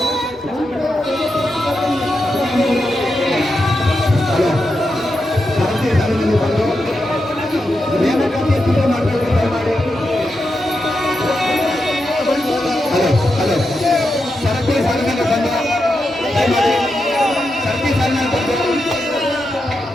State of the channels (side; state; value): both; normal; correlation 0.87